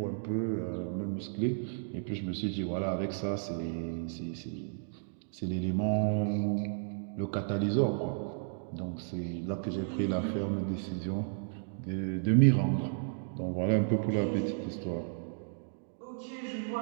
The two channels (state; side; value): silent; left; digital silence